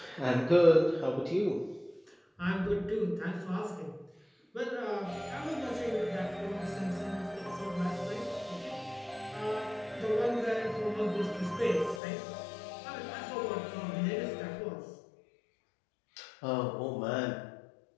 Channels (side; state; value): right; drops out; at 12.0 s